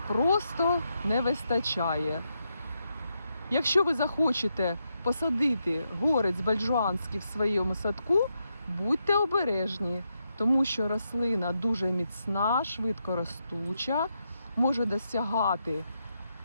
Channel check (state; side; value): inverted; both; correlation -0.83